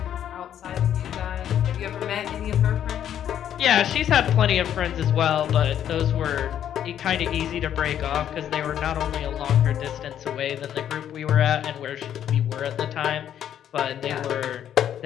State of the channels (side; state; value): right; quieter; 10.1 dB